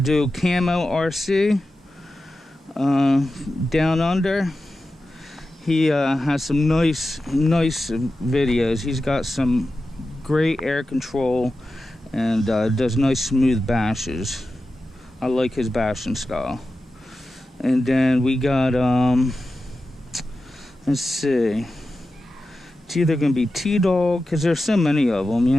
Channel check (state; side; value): normal; both; correlation 0.92